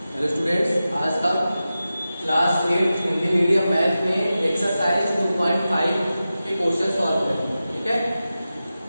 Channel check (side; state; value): both; inverted; correlation -0.93